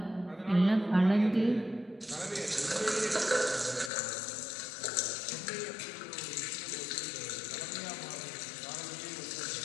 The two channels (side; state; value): right; drops out; at 3.9 s